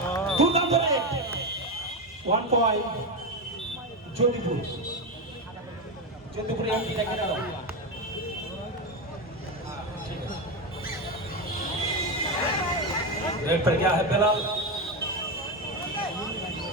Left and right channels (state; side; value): normal; both; correlation 0.13